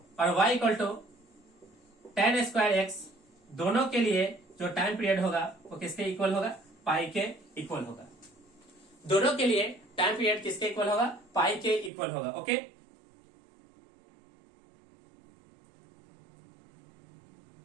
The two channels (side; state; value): left; drops out; at 11.9 s